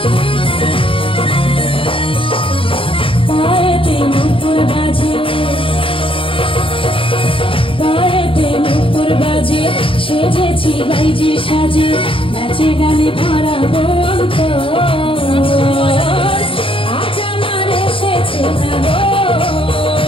সেজেছি বাইজি সাজে, নাচে গানে ভরাবো অন্তর। আজ আমার এসেছে না গো,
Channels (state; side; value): late; right; 0.26 ms